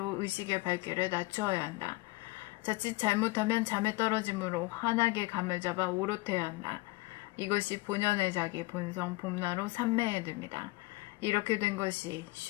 의식의 밝기를 낮추어야 한다. 자칫 잘못하면 잠에 떨어지므로 환하게 감을 잡아 오롯해야 한다. 이것이 본연의 자기 본성 봄나로 삼매에 듭니다. 이렇게 된 것이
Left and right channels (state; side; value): quieter; right; 22.4 dB